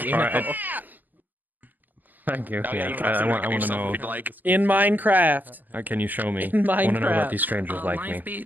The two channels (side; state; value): left; late; 0.085 ms